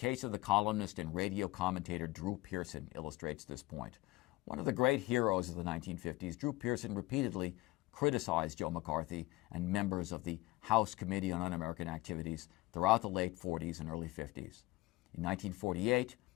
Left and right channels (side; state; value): right; quieter; 20.2 dB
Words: of the columnist and radio commentator Drew Pearson illustrates this point. One of the great heroes of the 1950s, Drew Pearson repeatedly criticized Joe McCarthy and members of the House Committee on Un-American Activities throughout the late 40s and early 50s. In 1948,